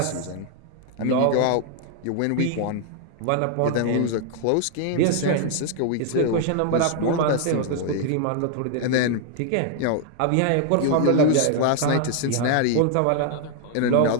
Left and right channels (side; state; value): both; different; correlation 0.00